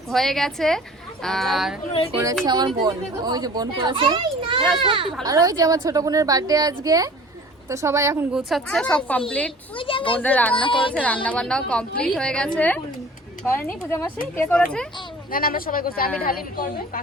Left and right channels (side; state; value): both; normal; correlation 0.46